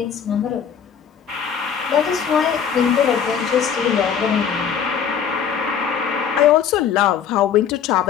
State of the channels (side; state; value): right; quieter; 7.8 dB